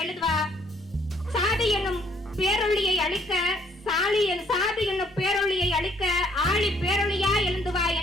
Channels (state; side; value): normal; both; correlation 0.65